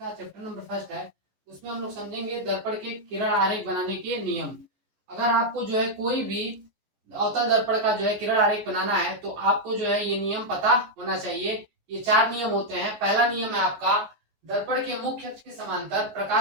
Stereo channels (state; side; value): late; left; 14 ms